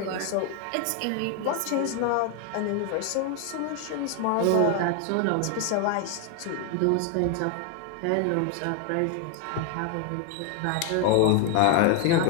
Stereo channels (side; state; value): both; different; correlation 0.01